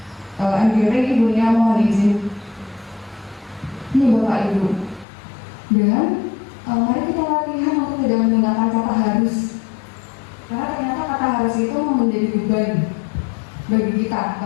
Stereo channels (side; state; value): right; drops out; at 5.1 s